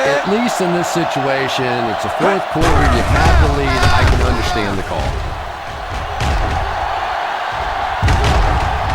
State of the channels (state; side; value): identical; both; correlation 1.00